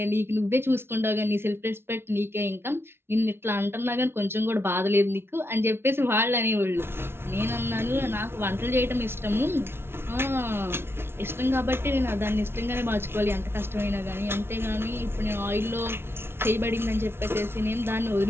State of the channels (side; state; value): left; late; 0.12 ms